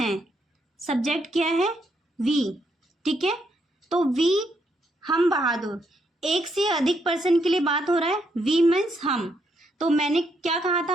सब्जेक्ट क्या है? वी, ठीक है। तो वी, हम बहादुर, एक से अधिक पर्सन के लिए बात हो रहा है, वी मीन्स हम। तो मैंने क्या कहा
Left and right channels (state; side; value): normal; both; correlation 0.76